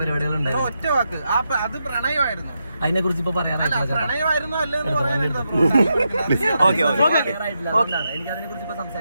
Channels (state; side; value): inverted; both; correlation -0.85